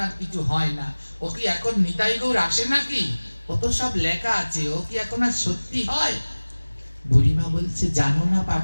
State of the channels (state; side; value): inverted; both; correlation -1.00